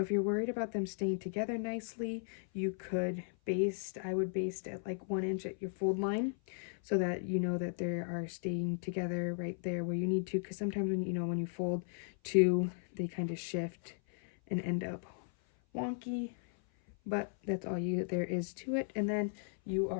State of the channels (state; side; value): silent; right; 54 dB below the other